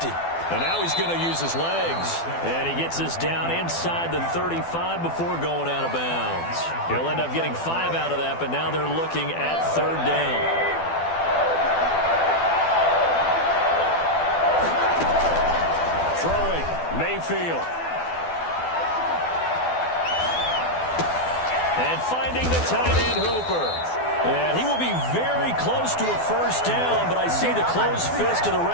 And now he's going to use his legs. And he gets this down inside the 35 before going out of bounds. He'll end up getting 5 out of that, but now they're looking at 3rd down. From Mayfield. And finding the tight end, Hooper. And he will be very close to a first down, but I see the closed fist of the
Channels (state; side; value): late; right; 12 ms